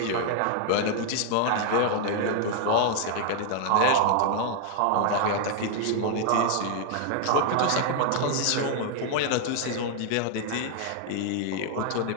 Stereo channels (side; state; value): both; different; correlation 0.00